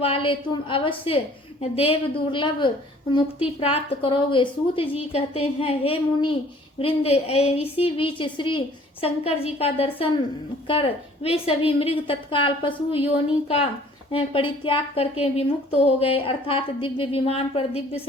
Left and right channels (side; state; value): both; normal; correlation 0.54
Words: तुम अवश्य देव दुर्लभ मुक्ति प्राप्त करोगे। सूत जी कहते हैं, हे मुनि वृंद, इसी बीच श्री शंकर जी का दर्शन कर वे सभी मृग तत्काल पशु योनि का परित्याग करके विमुक्त हो गए, अर्थात दिव्य विमान पर दिव्य